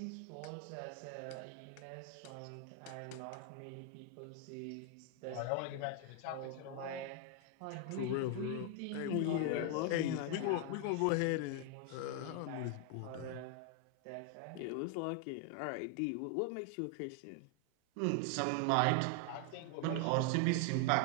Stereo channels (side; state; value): both; different; correlation 0.00